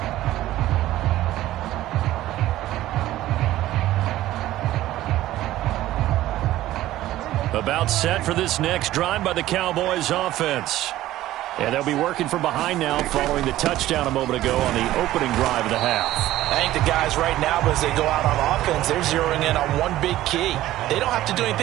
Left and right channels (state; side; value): quieter; left; 14.9 dB